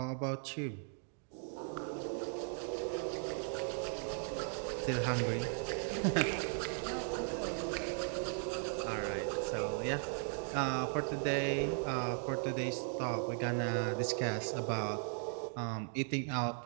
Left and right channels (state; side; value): silent; left; 53 dB below the other